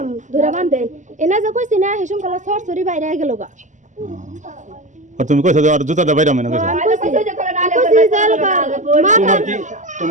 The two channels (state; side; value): late; left; 0.36 ms